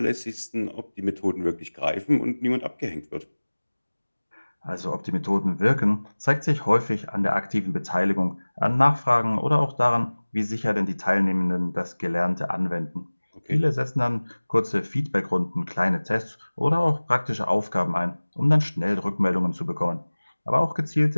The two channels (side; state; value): both; inverted; correlation -1.00